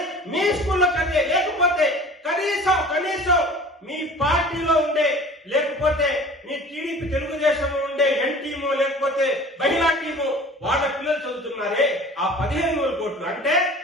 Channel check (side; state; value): both; normal; correlation 0.44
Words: మీ స్కూల్లో చదివే, లేకపోతే కనీసం మీ పార్టీలో ఉండే, లేకపోతే మీ టీడీపీ తెలుగుదేశంలో ఉండే ఎన్ టీము, లేకపోతే మహిళా టీము, వాళ్ళ పిల్లలు చదువుతున్నారే ఆ 15,000 కోట్లు. అంటే